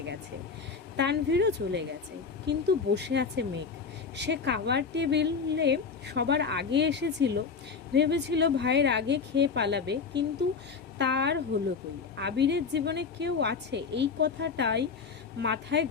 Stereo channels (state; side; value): quieter; right; 5.4 dB